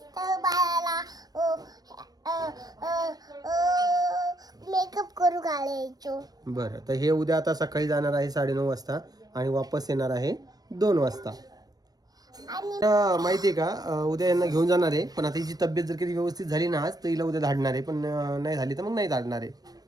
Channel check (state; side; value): late; left; 0.19 ms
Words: बाळाला मेकअप करू घालायचो. बरं, तर हे उद्या आता सकाळी जाणार आहे 9:30 वाजता आणि वापस येणार आहे 2 वाजता. माहिती आहे का, उद्या यांना घेऊन जाणार आहे. पण आता हिची तब्येत जर कधी व्यवस्थित झाली ना आज तर हिला उद्या धाडणार आहे, पण नाही झाली तर मग नाही धाडणार आहे.